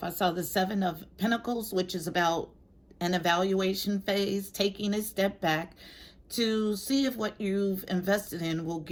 I saw the Seven of Pentacles, which is about an evaluation phase, taking a step back to see if what you've invested in will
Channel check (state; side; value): identical; both; correlation 1.00